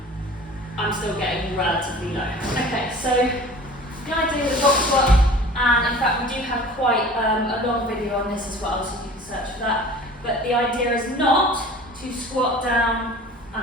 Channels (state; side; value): normal; both; correlation 0.43